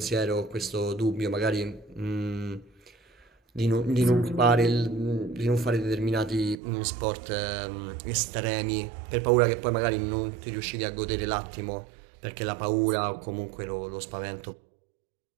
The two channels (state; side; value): drops out; left; at 6.6 s